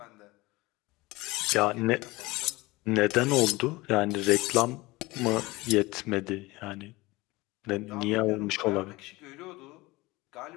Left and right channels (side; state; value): right; quieter; 21.4 dB